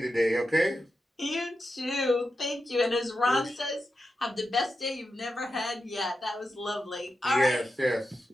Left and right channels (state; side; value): normal; both; correlation 0.89